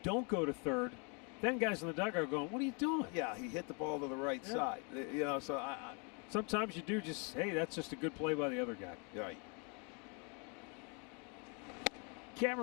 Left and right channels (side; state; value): right; quieter; 34.8 dB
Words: don't go to third, then guys in the dugout are going, what are you doing? Yeah, he hit the ball to the right side. You know, so sometimes you do just, hey, that's just a good play by the other guy. Right.